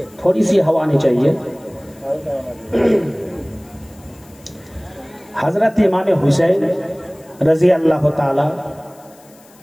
थोड़ी सी हवा आनी चाहिए। हजरत इमाम हुसैन रजी अल्लाह ताला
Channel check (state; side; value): noise; left; hiss, 27 dB below the sound